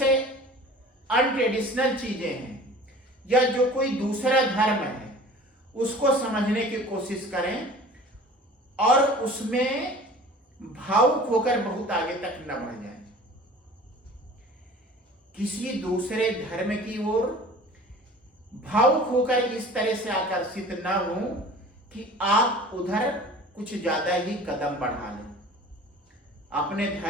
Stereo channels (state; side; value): normal; both; correlation 0.43